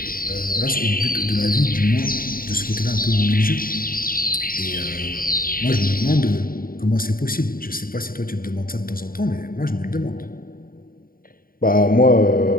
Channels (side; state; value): right; late; 0.42 ms